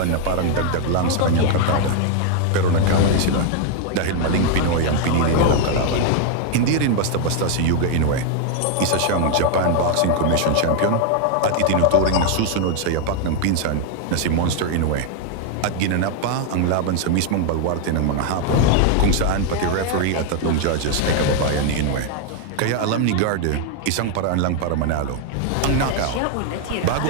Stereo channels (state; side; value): different; both; correlation 0.00